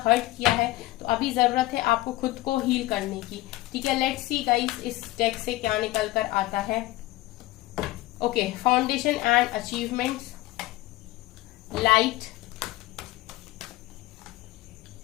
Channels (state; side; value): quieter; right; 18.1 dB